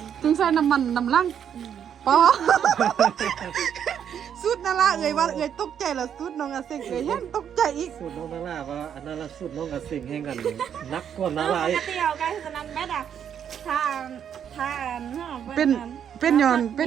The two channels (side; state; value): left; quieter; 8.7 dB